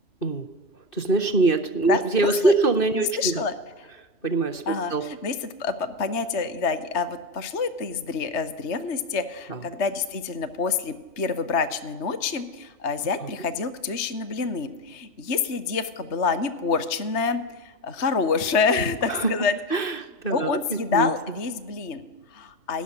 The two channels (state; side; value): late; right; 3.2 ms